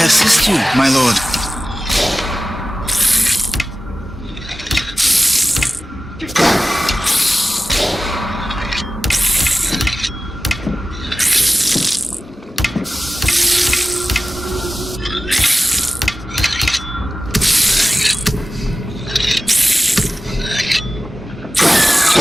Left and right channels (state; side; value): normal; both; correlation 0.95